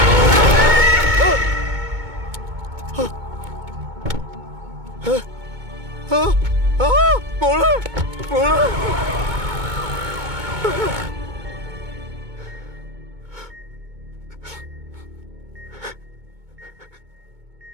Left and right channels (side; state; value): left; late; 2.2 ms